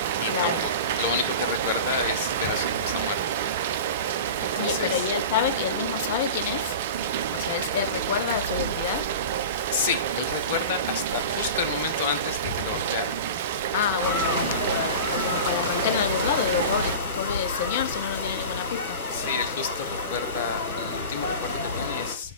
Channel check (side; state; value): both; inverted; correlation -0.31